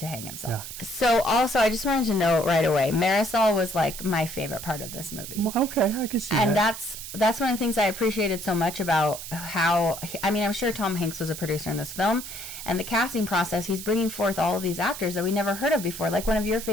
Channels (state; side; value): noise; right; hiss, 10 dB below the sound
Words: hang himself. Yeah. So also, I just wanted to note right away, Marisol was like my favorite part of this movie. Well, okay, I can see and that. And that's one of the things I appreciated so much about how, I mean, I'm sure Tom Hanks was a producer in this film, and the casting process, he's bringing forth all of these actors that we never heard of before. Like one of your